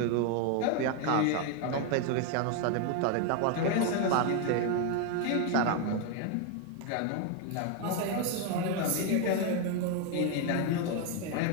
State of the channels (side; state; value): both; different; correlation 0.01